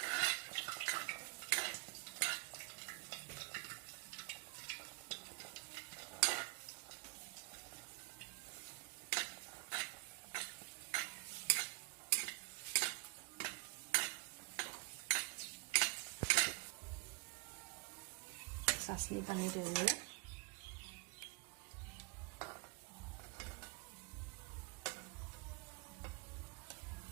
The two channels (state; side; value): quieter; left; 28.4 dB